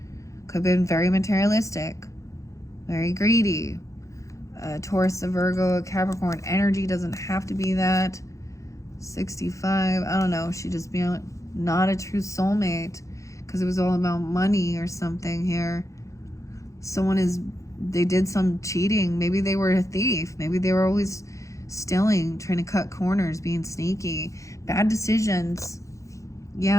could have been very materialistic, very greedy. Taurus, a Virgo, a Capricorn energy doesn't have to be that. 65, I don't know. She just be not a true soulmate because it was all about money or something here. They did some cheating. Maybe they were a thief. Maybe they were always stealing, trying to cut corners, being sneaky. Bad decisions.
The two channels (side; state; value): right; late; 0.15 ms